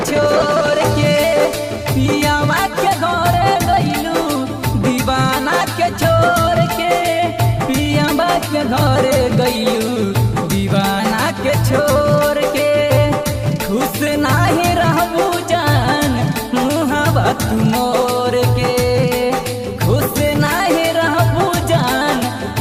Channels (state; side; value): identical; both; correlation 1.00